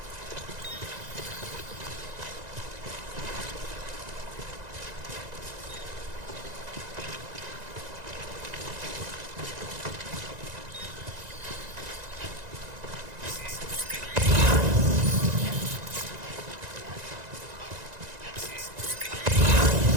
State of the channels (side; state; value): left; late; 1.9 ms